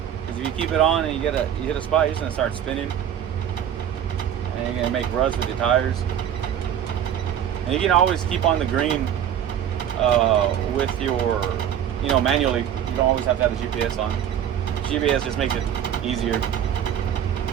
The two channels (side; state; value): left; quieter; 9.7 dB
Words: If you keep it on and you hit a spot, you're just gonna start spinning, and you're gonna make ruts with your tires. And you can always keep on the green with your, manually. You don't always have to have the GPS on. GPS just makes it easier.